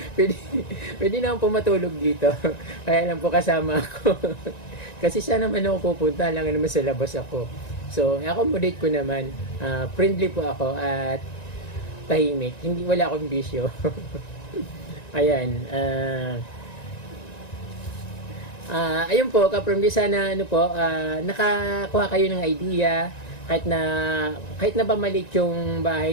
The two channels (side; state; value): right; late; 1.9 ms